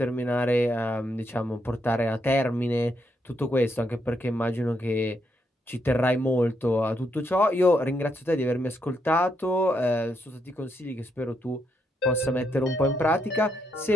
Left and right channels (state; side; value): normal; both; correlation 0.78